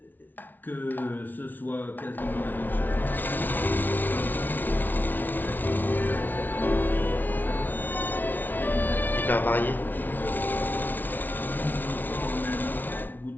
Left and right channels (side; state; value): right; late; 0.087 ms